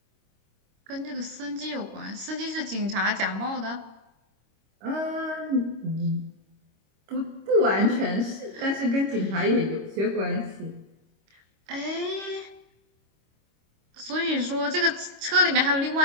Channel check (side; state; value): left; late; 25 ms